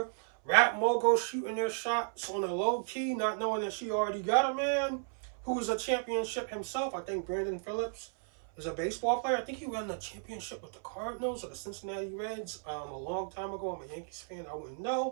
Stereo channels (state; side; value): silent; left; 55 dB below the other